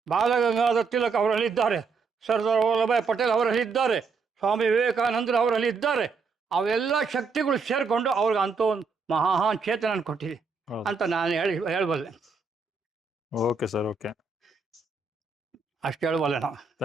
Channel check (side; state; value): left; quieter; 4.8 dB